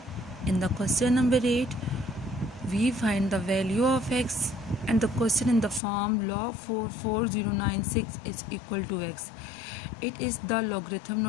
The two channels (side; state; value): right; drops out; at 5.8 s